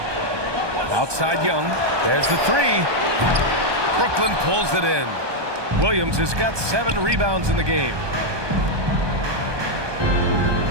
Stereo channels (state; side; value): late; left; 1.2 ms